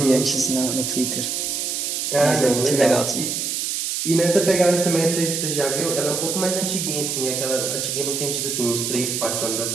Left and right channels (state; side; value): noise; right; hiss, 2 dB below the sound